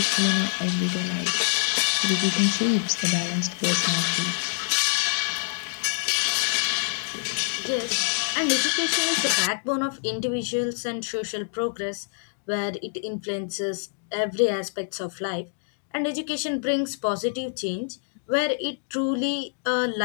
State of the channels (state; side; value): silent; right; digital silence